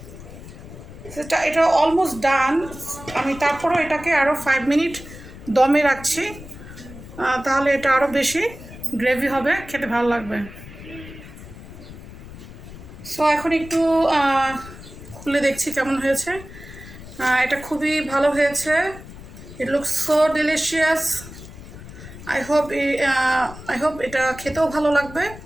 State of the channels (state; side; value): noise; left; rumble, 15 dB below the sound